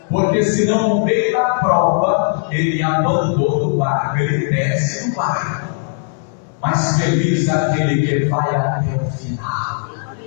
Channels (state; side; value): silent; right; digital silence